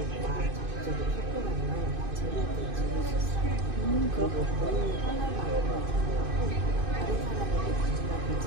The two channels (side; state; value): left; late; 2.5 ms